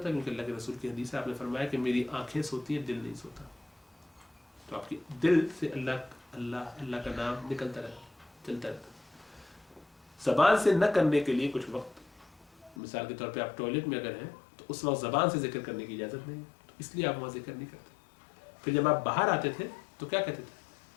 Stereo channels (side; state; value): right; drops out; at 12.8 s